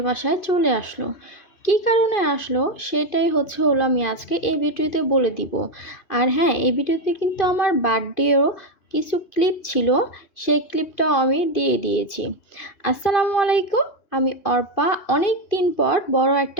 বাসায় চলে আসলো। কী কারণে আসলো সেটাই হলো আমি আজকে এই ভিডিওতে বলে দিব। আর হ্যাঁ, এই ভিডিওতে কিন্তু আমার বার্থডেও কিছু ক্লিপ ছিল, সেই ক্লিপটাও আমি দিয়ে দিয়েছি। আসসালামু আলাইকুম, আমি অর্পা অনেক দিন পর বড়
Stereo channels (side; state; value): right; late; 2.5 ms